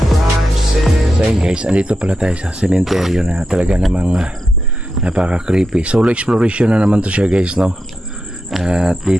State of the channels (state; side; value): normal; both; correlation 0.87